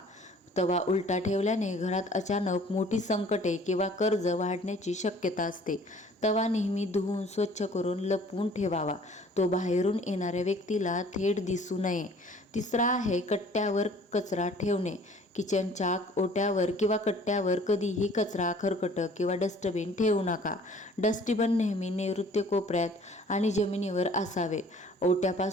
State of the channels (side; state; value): both; normal; correlation 0.53